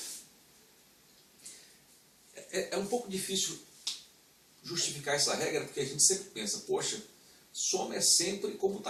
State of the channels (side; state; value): both; identical; correlation 1.00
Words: É um pouco difícil justificar essa regra, porque a gente sempre pensa, poxa, soma é sempre